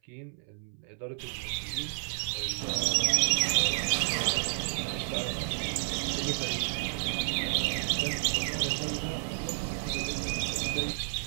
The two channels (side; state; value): left; silent; 57 dB below the other